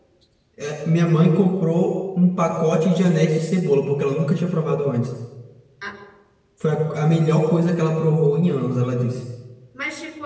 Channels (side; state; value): both; identical; correlation 1.00